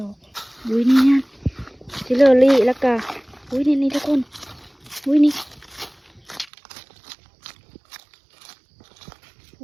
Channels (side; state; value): left; drops out; at 6.5 s